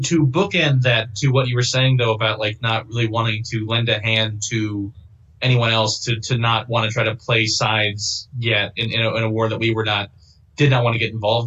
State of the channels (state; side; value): identical; both; correlation 1.00